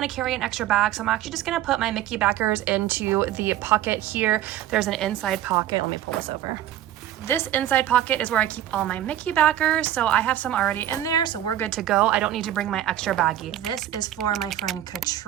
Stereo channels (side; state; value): left; quieter; 12.2 dB